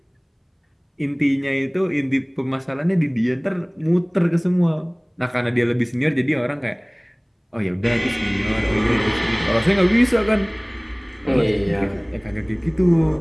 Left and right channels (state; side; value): identical; both; correlation 1.00